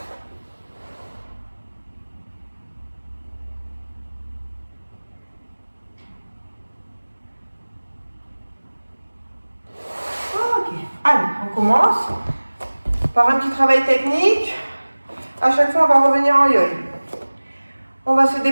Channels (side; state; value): both; inverted; correlation -1.00